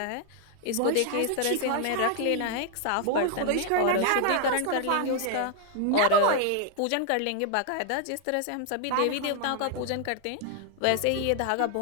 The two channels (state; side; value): different; both; correlation 0.00